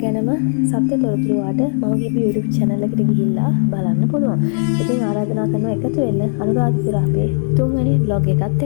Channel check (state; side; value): silent; right; digital silence